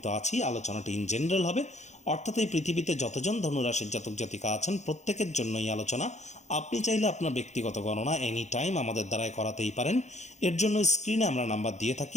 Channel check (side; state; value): right; late; 0.33 ms